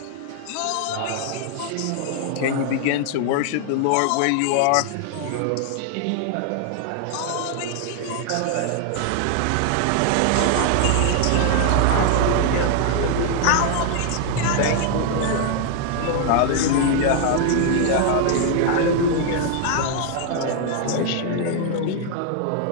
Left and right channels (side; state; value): both; different; correlation 0.00